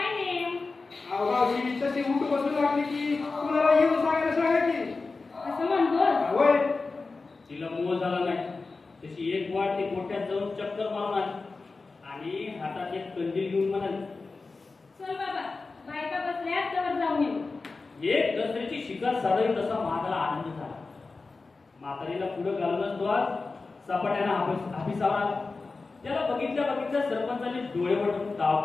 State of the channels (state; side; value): quieter; right; 3.9 dB